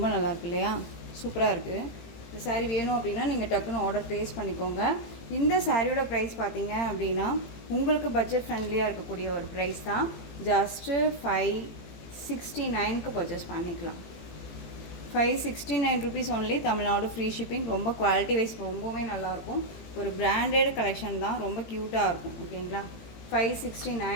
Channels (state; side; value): late; right; 18 ms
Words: நல்லாயிருக்கு இல்லையா, சூப்பராக இருக்குது. இந்த சாரீ வேணும் அப்படின்னா நீங்கள் டக்குன்னு ஆர்டர் ப்ளேஸ் பண்ணிக்கோங்க. இந்த சாரியோட ப்ரைஸ் பார்த்தீங்க அப்படின்னா உங்களுக்கு பட்ஜெட் ஃப்ரெண்ட்லியாக இருக்கக்கூடிய ஒரு ப்ரைஸ் தான். ஜஸ்ட்டு 569க்கு பர்ச்சேஸ் பண்ணிக்கலாம். 569 rupees only, Tamil Nadu free shipping. ரொம்ப குவாலிட்டி வைஸ் ரொம்பவே நல்லாயிருக்கும். ஒரு பிராண்டட் கலெக்ஷன் தான், ரொம்ப க்யூட்டாக இருக்கும். ஓகேங்களா,